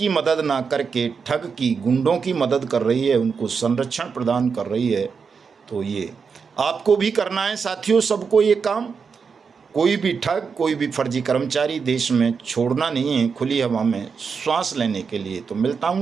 मदद ना करके ठग की, गुंडों की मदद कर रही है, उनको संरक्षण प्रदान कर रही है। तो ये आपको भी करना है साथियों, सबको ये काम। कोई भी ठग, कोई भी फर्जी कर्मचारी देश में छोड़ना नहीं है खुली हवा में श्वास लेने के लिए। तो मिलता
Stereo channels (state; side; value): quieter; left; 5.7 dB